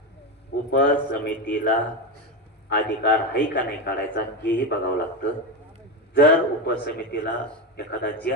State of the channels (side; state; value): both; normal; correlation 0.14